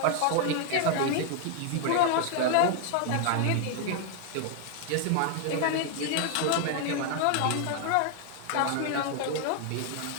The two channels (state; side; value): different; both; correlation 0.00